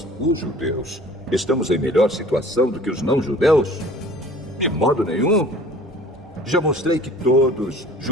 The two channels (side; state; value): both; normal; correlation 0.48